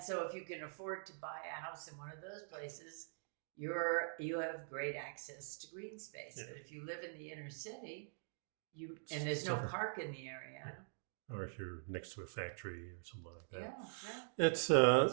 so if you can afford to buy a house in one of those places, you have great access to green space. Yeah. But if you live in the inner city, and there's no park in the area. Yeah. Or if you're next to a factory or something like that. Yeah. It's,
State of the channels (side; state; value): left; silent; digital silence